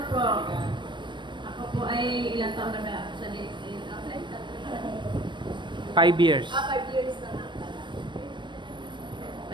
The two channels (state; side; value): late; left; 0.22 ms